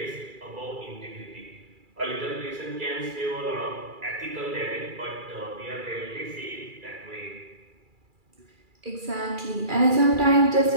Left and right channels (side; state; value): left; late; 2.3 ms